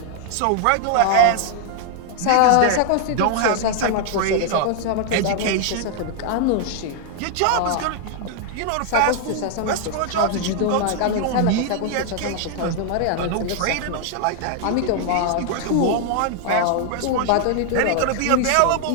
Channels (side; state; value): both; different; correlation 0.00